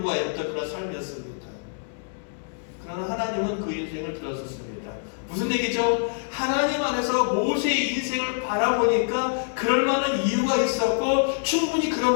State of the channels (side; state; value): right; silent; digital silence